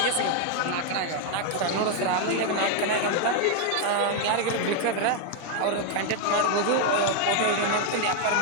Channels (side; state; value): both; different; correlation 0.00